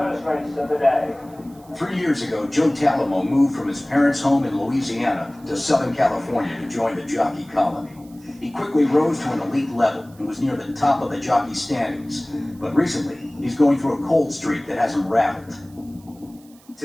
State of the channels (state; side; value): noise; right; hiss, 28 dB below the sound